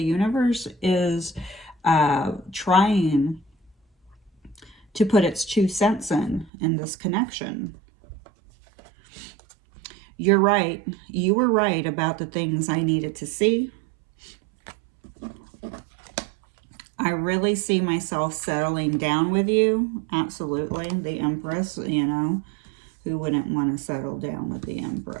universe is trying to put its 2 cents in this connection. You're right. You were right about the things I needed to see. I really see myself settling down with you. Absolutely. The Empress, you know, who wouldn't want to settle down with the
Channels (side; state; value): left; drops out; at 6.5 s